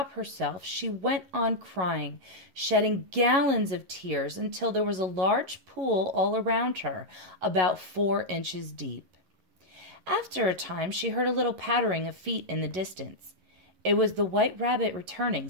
herself, she went on crying, shedding gallons of tears until there was a large pool all around her, about 4 inches deep. After a time, she heard a little pattering of feet in the distance. It was the White Rabbit returning,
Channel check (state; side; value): late; left; 11 ms